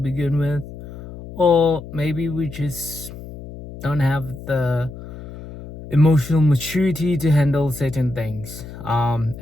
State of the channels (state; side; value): noise; left; hum, 13 dB below the sound